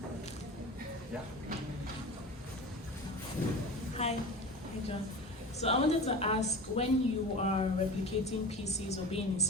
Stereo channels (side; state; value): both; normal; correlation 0.32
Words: Yeah. Hi, John. So I wanted to ask, when you are replicating pieces or being